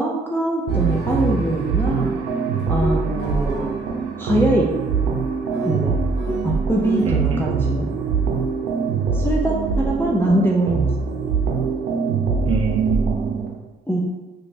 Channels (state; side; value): quieter; left; 3.2 dB